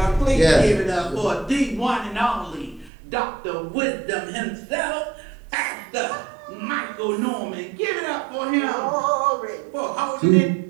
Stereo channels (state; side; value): drops out; left; at 2.9 s